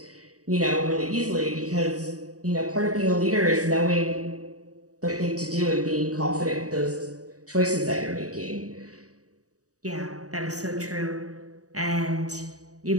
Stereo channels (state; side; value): late; left; 0.66 ms